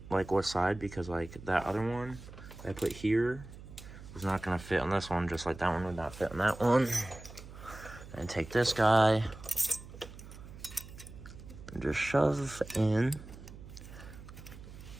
like what side, because like that other one I put here is not gonna fit on this one, just like that one would not fit on that one. And take this guy and just shove in,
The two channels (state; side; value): noise; right; hum, 15 dB below the sound